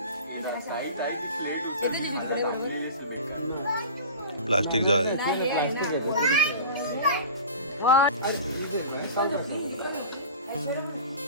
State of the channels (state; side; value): inverted; both; correlation -0.36